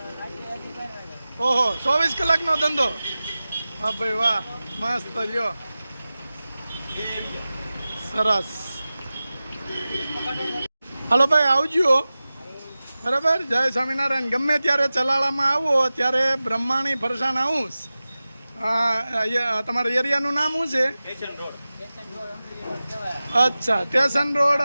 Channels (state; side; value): inverted; both; correlation -0.96